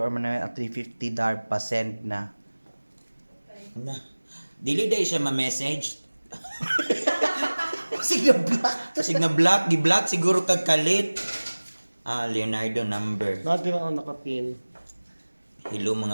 Manuel at 350 darb pa send na. Na. Dili dahil siya ma-message. Sige black. Kasi na black, gi-black siguro kag kalit. Leonardo number. Natin ang nakapin. Hello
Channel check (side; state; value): both; inverted; correlation -1.00